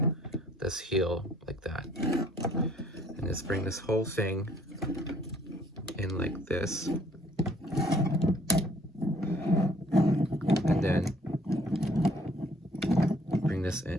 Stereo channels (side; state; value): both; normal; correlation 0.61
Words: heel like that, and just bring this whole thing in like this, and then bring this